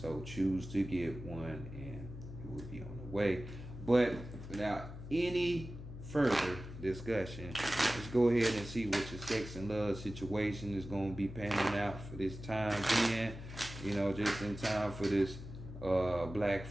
choose to get one, and it will be on the way. But without any further discussion, let's go ahead and see what your sex and love situation is going to be panning out for this time being. Just in time for this Black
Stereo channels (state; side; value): noise; left; hum, 11 dB below the sound